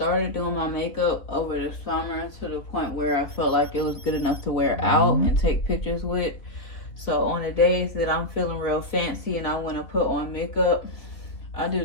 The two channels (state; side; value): late; right; 3.1 ms